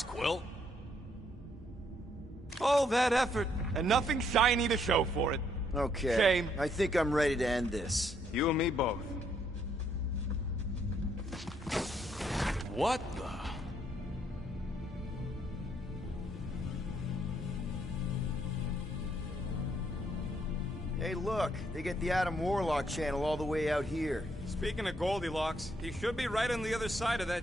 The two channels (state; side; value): normal; both; correlation 0.71